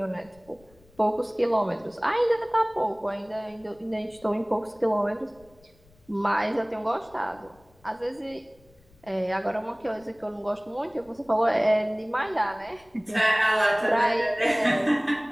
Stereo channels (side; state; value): left; noise; rumble, 30 dB below the sound